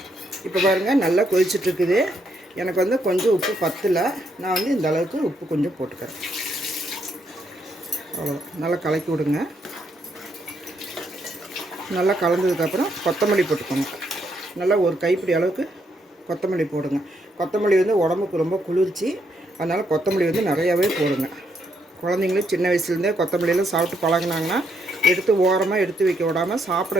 இப்போ பாருங்கள் நல்லா கொதிச்சிட்ருக்குது. எனக்கு வந்து கொஞ்சம் உப்பு பத்தலை, நான் வந்து இந்த அளவுக்கு உப்பு கொஞ்சம் போட்டுக்கிறேன். அவ்வளோதான், நல்லா கலக்கி விடுங்க. நல்லா கலந்ததுக்கப்புறம் கொத்தமல்லி போட்டுக்கோங்க. நல்லா ஒரு கைப்பிடி அளவுக்கு கொத்தமல்லி போடுங்க. கொத்தமல்லி வந்து உடம்புக்கு ரொம்ப குளிர்ச்சி, அதனால் கொத்தமல்லி வந்து நிறையாவே போடுங்க. குழந்தைங்களும் சின்ன வயசுலேருந்தே கொத்தமல்லியெல்லாம் சாப்பிட்டு பழகினாங்கன்னா எடுத்து ஓரமாக எடுத்து வைக்க விடாமல் சாப்பிட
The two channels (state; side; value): normal; both; correlation 0.75